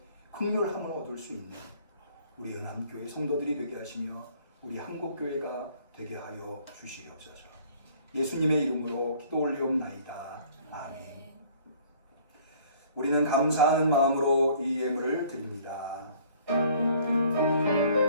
긍휼함을 얻을 수 있는 우리 은암교회 성도들이 되게 하시며 우리 한국교회가 되게 하여 주시옵소서. 예수님의 이름으로 기도 올리옵나이다. 아멘. 우리는 감사하는 마음으로 이 예물을 드립니다.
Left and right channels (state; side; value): inverted; both; correlation -0.55